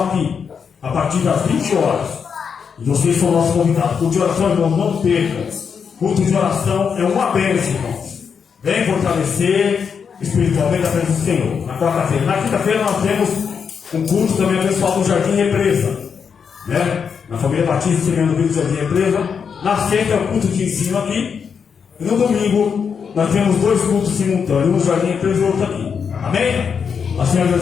aqui, a partir das 20 horas. E vocês são nossos convidados. Culto de oração, irmãos, não percam. Culto de oração é uma bênção, irmãos. Vem fortalecer espiritualmente a presença do Senhor. Na quarta-feira. Na quinta-feira nós temos um culto também abençoado do Jardim Represa. Né? Na família Batista, Semeando Vida do Jardim Represa. Na sexta é o culto de ensino aqui. E no domingo nós temos 2 cultos simultâneos, um no Jardim Represa e outro aqui. Amém? A Senhora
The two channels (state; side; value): quieter; right; 6.5 dB